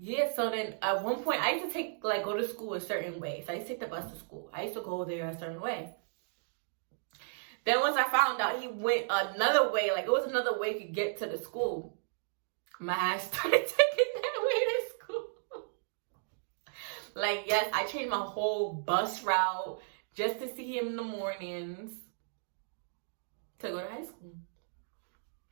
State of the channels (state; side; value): silent; left; digital silence